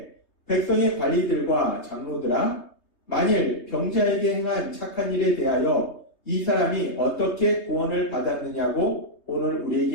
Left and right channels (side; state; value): right; late; 3.2 ms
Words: 백성의 관리들과 장로들아 만일 병자에게 행한 착한 일에 대하여 이 사람이 어떻게 구원을 받았느냐고 오늘